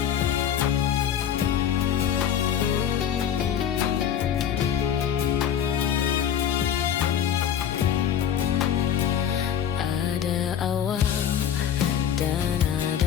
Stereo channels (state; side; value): quieter; right; 9.1 dB